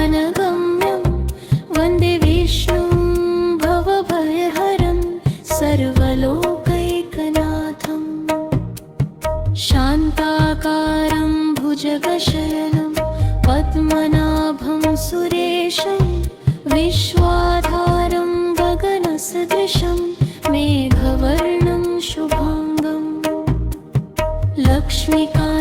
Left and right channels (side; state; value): both; identical; correlation 1.00